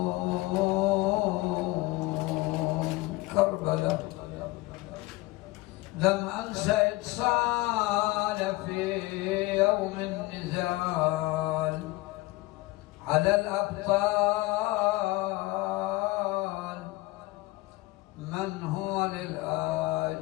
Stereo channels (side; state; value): right; quieter; 20.6 dB